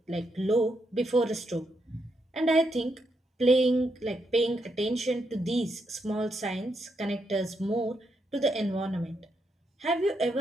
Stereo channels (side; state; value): both; normal; correlation 0.80